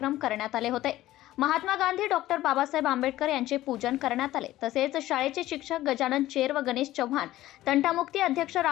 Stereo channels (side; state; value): right; quieter; 15.3 dB